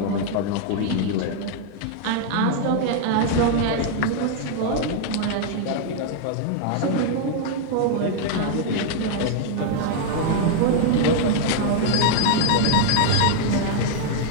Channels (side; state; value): both; different; correlation 0.00